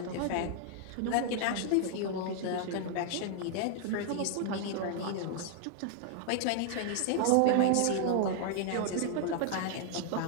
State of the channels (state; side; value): different; both; correlation 0.00